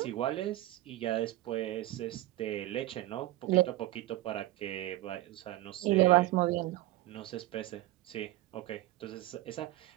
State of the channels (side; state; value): left; quieter; 16.5 dB